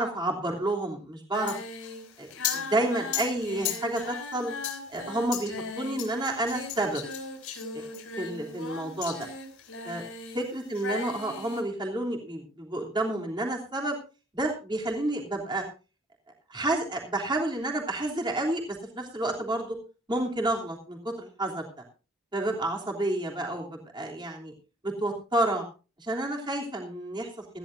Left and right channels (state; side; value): normal; both; correlation 0.55